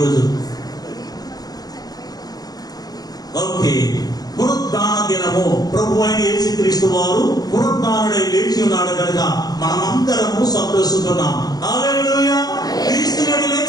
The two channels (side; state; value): right; late; 0.19 ms